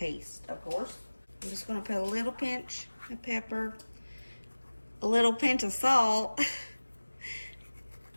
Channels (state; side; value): inverted; both; correlation -1.00